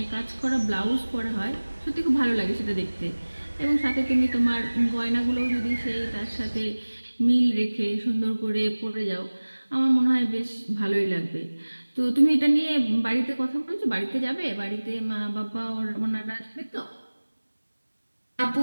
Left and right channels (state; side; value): inverted; both; correlation -1.00